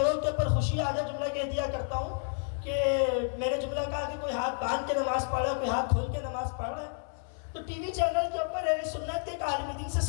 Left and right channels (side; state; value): right; silent; digital silence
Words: کے اوپر خوشی آ جائے، جملہ کہہ دیا کرتا ہوں کہ میں نے جملہ کہا کہ کوئی ہاتھ باندھ کے نماز پڑھ رہا ہے، کوئی ہاتھ کھول کے نماز پڑھ رہا ہے۔ تو ٹی وی چینل کے اوپر اہل سنت کے ایک عالم دین سے